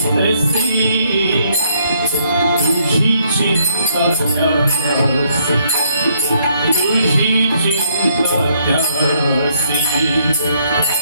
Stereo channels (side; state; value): both; inverted; correlation -0.69